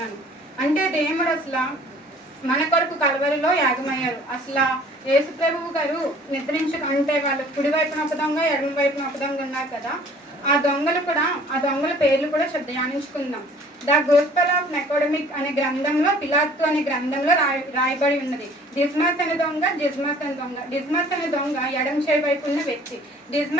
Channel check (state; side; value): normal; both; correlation 0.52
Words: అంటే దేవుడు అసలు మన కొరకు కలవరిలో యాగమయ్యారు. అసలు యేసు ప్రభువు గారు నిద్రించకంటే వాళ్ళు కుడి వైపున ఒక దొంగ, ఎడమ వైపున ఒక దొంగ ఉన్నారు కదా. ఆ దొంగల పేర్లు కూడా ధ్యానించుకుందాం. ద గోస్పెల్ ఆఫ్ నికోడెమిక్ అనే గ్రంథంలో, పిలాతు అనే గ్రంథంలో రాయబడి ఉన్నది. డిస్మస్ అనే దొంగ, జిస్మస్ అనే దొంగ. డిస్మస్ అనే దొంగ ఎడమ చేయి వైపు ఉన్న వ్యక్తి,